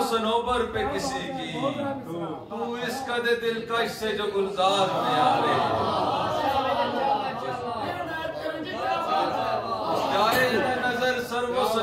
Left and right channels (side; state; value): both; identical; correlation 1.00